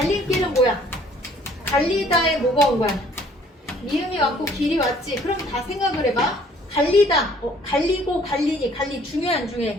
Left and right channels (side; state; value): both; normal; correlation 0.58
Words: 뭐야? 갈리다에 뭐가 온 거야? 미음이 왔고 길이 왔지. 그럼 다 생각을 해봐. 갈리다. 갈리고 갈리니. 갈리 중요해 안